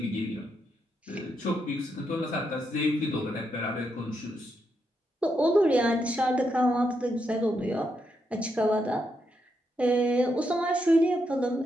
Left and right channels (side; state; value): both; normal; correlation 0.81